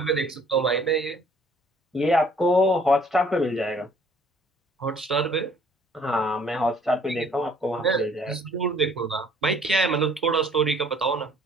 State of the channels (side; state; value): both; normal; correlation 0.59